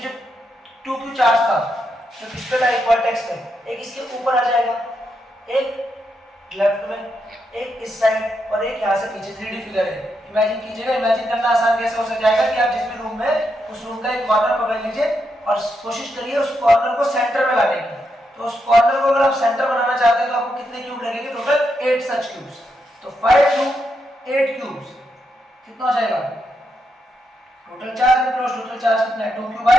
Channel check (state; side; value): normal; both; correlation 0.82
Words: 2q चार्ज था जो किस पे था, एक वर्टेक्स पे, एक इसके ऊपर आ जाएगा, एक लेफ्ट में, एक इस साइड और एक यहाँ से पीछे। 3D फिगर है, इमेजिन कीजिएगा। इमेजिन करना आसान कैसे हो जाएगा कि आप जिस भी रूम में उस रूम का एक कॉर्नर पकड़ लीजिए और कोशिश करिए उस कॉर्नर को सेंटर में लाने की। तो उस कॉर्नर को अगर आप सेंटर बनाना चाहते हैं तो आपको कितने क्यूब लगेंगे, टोटल 8 सच क्यूब्स। तो 5 क्यूब 8 क्यूब्स कितना हो जाएगा, total charge enclose, total charge कितना है 2q